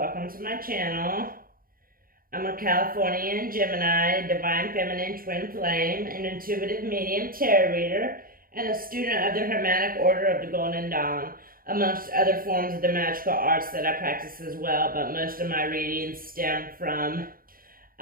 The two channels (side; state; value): left; late; 0.42 ms